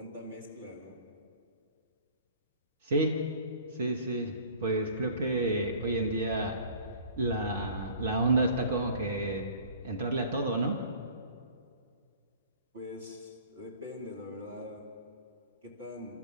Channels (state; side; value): inverted; both; correlation -0.47